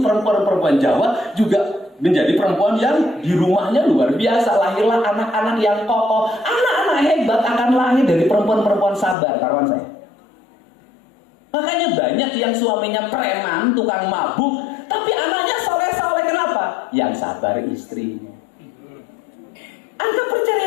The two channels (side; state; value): right; drops out; at 9.2 s